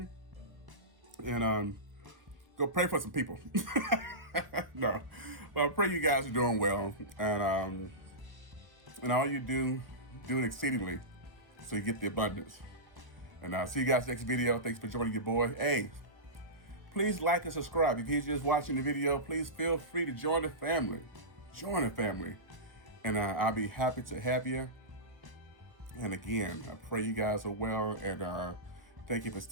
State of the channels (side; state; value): left; late; 1.2 ms